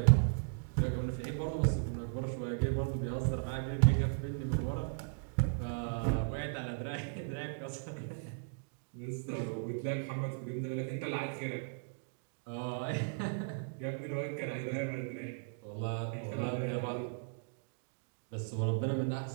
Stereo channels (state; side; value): silent; left; digital silence